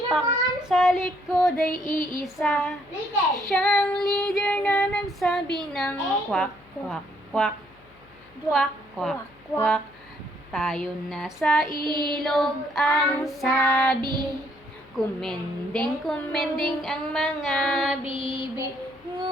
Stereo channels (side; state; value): left; noise; hum, 27 dB below the sound